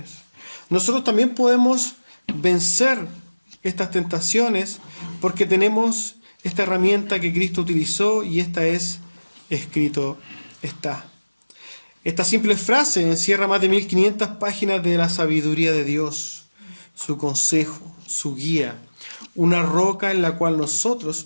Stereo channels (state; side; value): inverted; both; correlation -1.00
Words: Nosotros también podemos vencer estas tentaciones porque tenemos esta herramienta que Cristo utilizó, y esta es escrito está. Esta simple frase encierra más de 1500 páginas de la sabiduría de Dios, su consejo, su guía, una roca en la cual nosotros